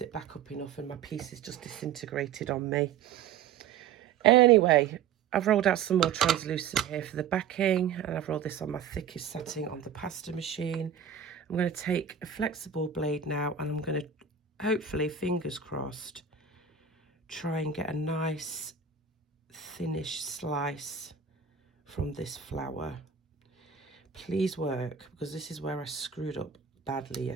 it back up enough and my pieces just disintegrated on me. Anyway, I've rolled out some more translucent here for the backing, and I've rolled this on my thickest setting on the pasta machine. I'm going to take a flexible blade now, and I'm going to, hopefully, fingers crossed, try and get a nice thinnish slice from this flower. Please work, because this is where I screwed up badly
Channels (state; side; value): quieter; left; 7.6 dB